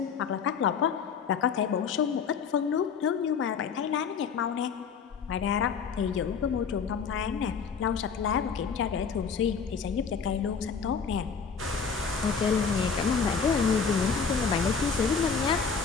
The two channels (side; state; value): right; quieter; 6.0 dB